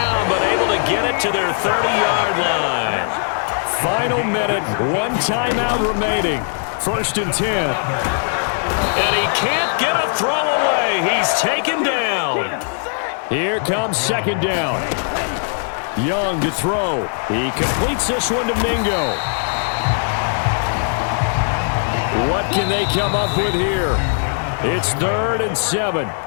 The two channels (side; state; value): right; silent; digital silence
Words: but able to get it to their 30-yard line. Final minute, 1 timeout remaining. 1st and 10. And he can't get a throw away. He's taken down. Here comes 2nd down. Young to throw. He completes this one to Mingo. What can they come up with here? It's 3rd and 7.